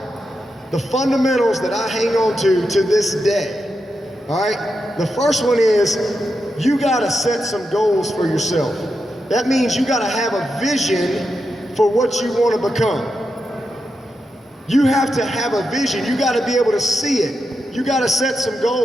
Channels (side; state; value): both; normal; correlation 0.87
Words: The fundamentals that I hang on to this day. All right, the first one is you got to set some goals for yourself. That means you got to have a vision for what you want to become. You have to have a vision. You got to be able to see it. You got to set some